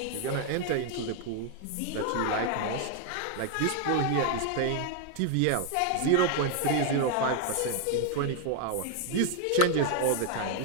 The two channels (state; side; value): different; both; correlation 0.00